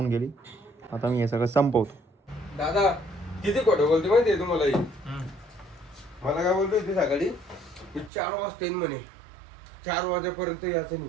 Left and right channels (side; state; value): left; drops out; at 8.1 s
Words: गेली. आता मी हे सगळं संपवतो. दादा किती खोटं बोलते माहिती आहे तुम्हाला? मला काय बोलतोय ते सकाळी 4 वाजता येईन म्हणे. 4 वाजेपर्यंत यायचं